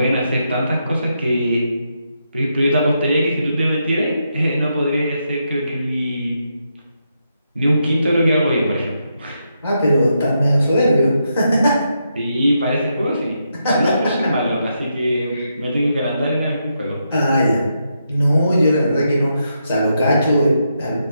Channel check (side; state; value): both; inverted; correlation -0.82